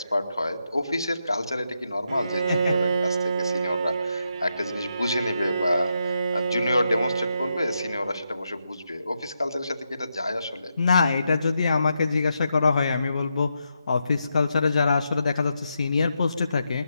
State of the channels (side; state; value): both; inverted; correlation -0.83